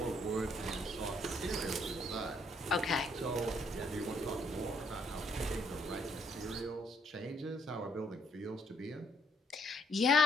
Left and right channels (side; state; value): both; normal; correlation 0.69